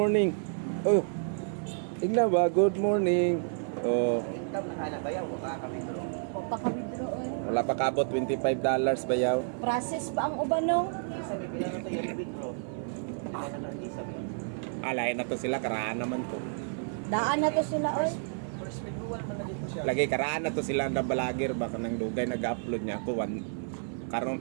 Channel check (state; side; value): silent; left; 58 dB below the other